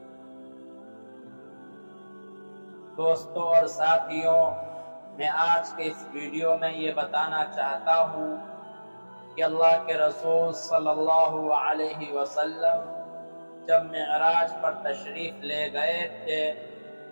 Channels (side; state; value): both; inverted; correlation -1.00